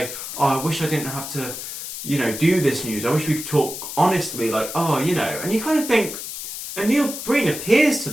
"Oh, I wish I didn't have to, do this news. I wish we could talk honestly." Like, and you kind of think, and Neil Breen appears to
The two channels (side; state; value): left; noise; hiss, 8 dB below the sound